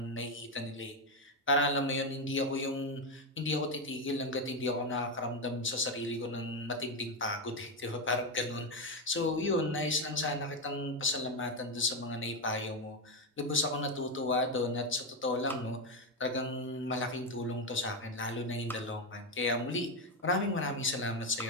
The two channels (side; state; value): both; normal; correlation 0.08